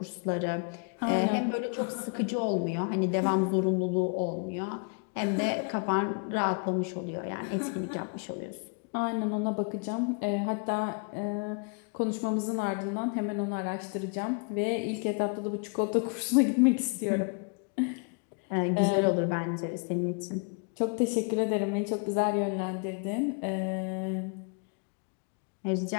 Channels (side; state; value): right; quieter; 36.2 dB